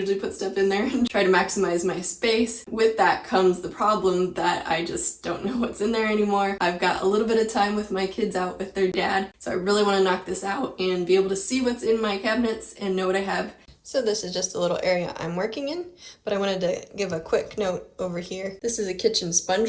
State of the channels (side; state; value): both; identical; correlation 1.00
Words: put stuff in there and try to maximize my space. With that comes the problem that I just don't know what's in there anymore. I've got a little bit of time with my kids out with their dad, so I really want to knock this out and be able to see what's in my cabinets and know what I have. So this is just a little area I'm working in, but I wanted to give a quick note over here. This is a kitchen